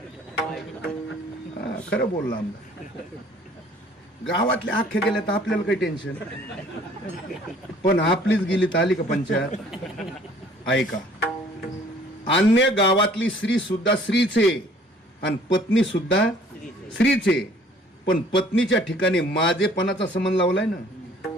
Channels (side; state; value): both; normal; correlation 0.55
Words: खरं बोलला आमदार. गावातल्या अख्ख्या गेल्या तर आपल्याला काही टेन्शन, पण आपलीच गेली तर आली का पंचायत. ऐका, अन्य गावातली स्त्री सुद्धा स्त्रीचे आणि पत्नी सुद्धा स्त्रीचे, पण पत्नीच्या ठिकाणी माझेपणाचा संबंध लावलाय ना